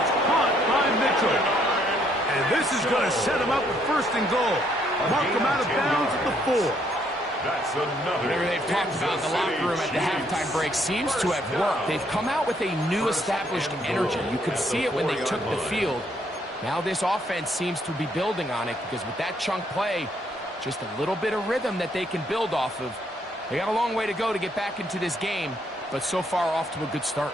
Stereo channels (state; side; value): normal; both; correlation 0.70